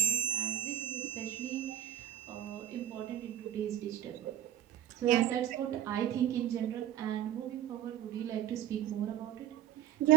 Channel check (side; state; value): left; quieter; 11.5 dB